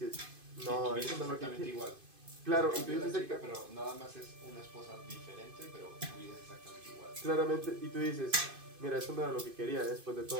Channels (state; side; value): late; left; 2.5 ms